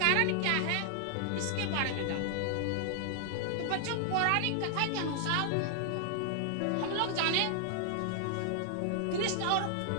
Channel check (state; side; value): different; both; correlation 0.00